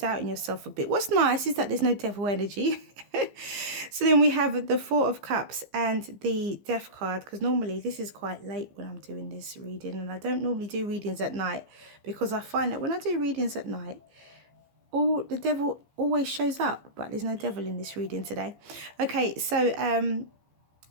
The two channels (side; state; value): left; late; 15 ms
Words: yourself a bit. What's nice is that there's no devil energy. So then we have the Four of Cups and the Death card, because normally this is quite late when I'm doing this reading, and I don't normally do readings at night, because I find that when I do readings at night, the devil always shows up, but there's no devil in this reading today. Okay, so